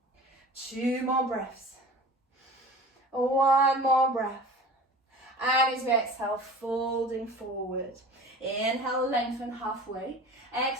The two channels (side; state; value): both; normal; correlation 0.39